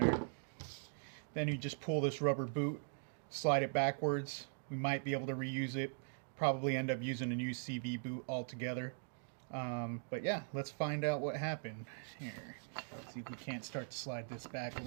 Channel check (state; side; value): silent; left; digital silence